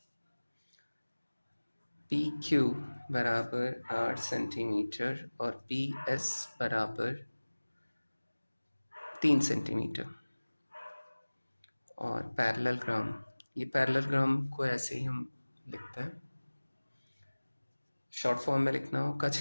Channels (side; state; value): both; inverted; correlation -1.00